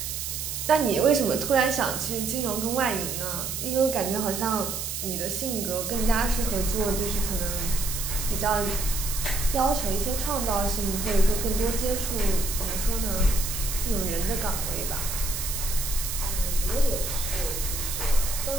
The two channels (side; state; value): right; noise; hiss, 4 dB below the sound